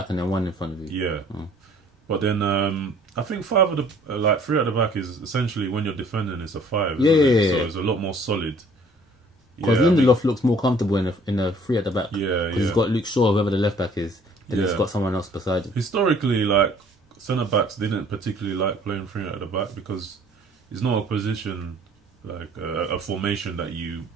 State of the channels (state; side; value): normal; both; correlation 0.56